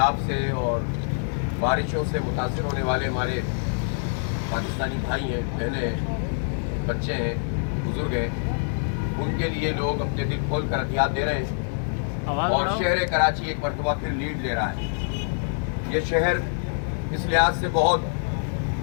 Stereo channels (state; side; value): silent; right; digital silence